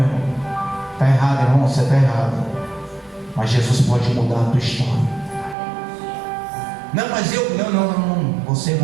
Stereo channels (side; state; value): left; drops out; at 5.6 s